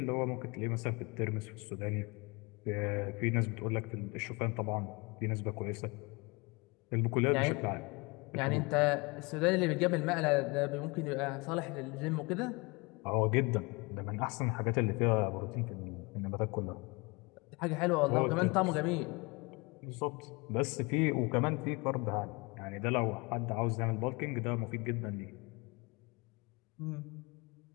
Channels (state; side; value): quieter; right; 27.1 dB